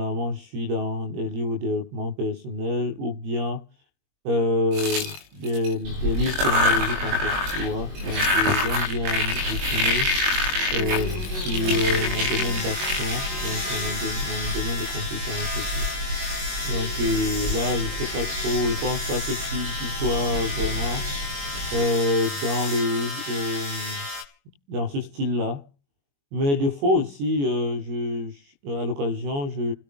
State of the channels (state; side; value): late; left; 21 ms